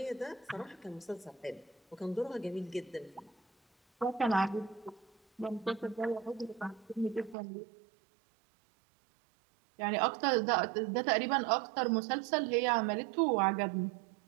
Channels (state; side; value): drops out; left; at 7.4 s